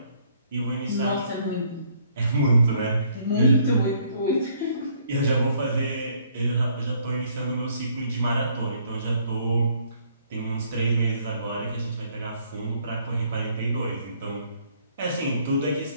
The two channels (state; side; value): inverted; both; correlation -0.65